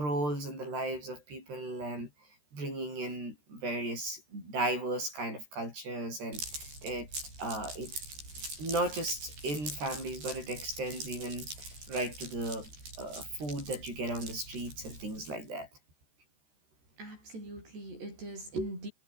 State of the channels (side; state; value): left; late; 13 ms